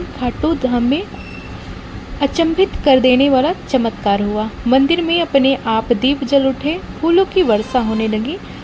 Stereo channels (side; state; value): both; identical; correlation 1.00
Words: खाटू धाम में अचंभित कर देने वाला चमत्कार हुआ। मंदिर में अपने आप दीप जल उठे, फूलों की वर्षा होने लगी